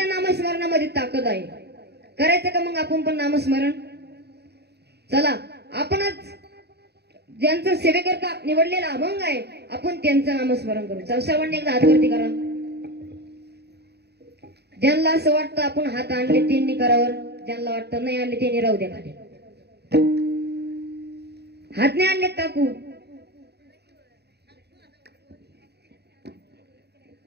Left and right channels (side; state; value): left; late; 0.48 ms